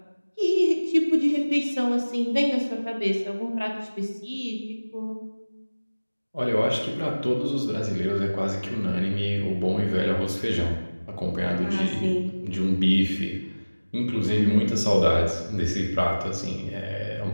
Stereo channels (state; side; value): inverted; both; correlation -1.00